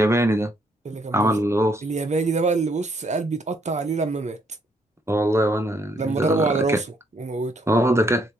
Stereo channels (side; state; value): both; normal; correlation 0.71